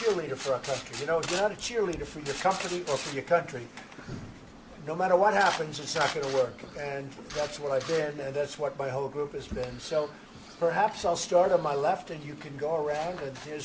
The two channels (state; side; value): identical; both; correlation 1.00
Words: for our country. You know, if you're not a cheerleader for your company or for your country, no matter what happens, it's not going to work. And that's what I've been, and that's what my whole group has been. So perhaps I'll start on my left, and you can go around. And